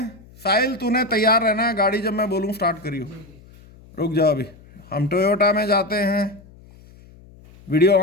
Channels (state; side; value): noise; left; hum, 24 dB below the sound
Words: साहिल तूने तैयार रहना है, गाड़ी जब मैं बोलूं स्टार्ट करियो। रुक जाओ अभी। हम टोयोटा में जाते हैं। वीडियो